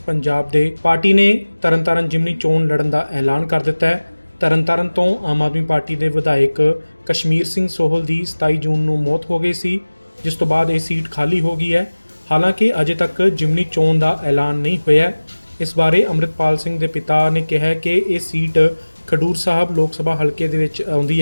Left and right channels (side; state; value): both; inverted; correlation -1.00